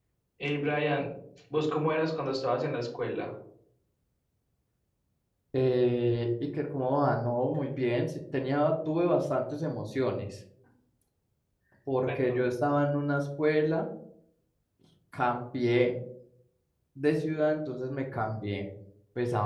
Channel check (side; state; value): both; identical; correlation 1.00